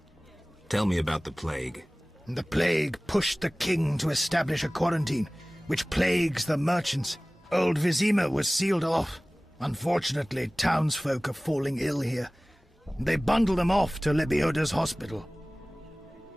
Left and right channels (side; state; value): both; normal; correlation 0.98